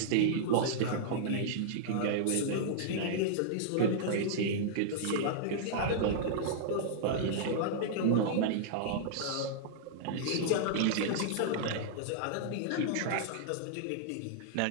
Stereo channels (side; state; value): both; different; correlation -0.02